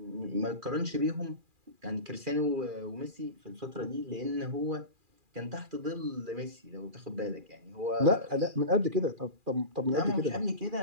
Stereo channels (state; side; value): late; left; 2.4 ms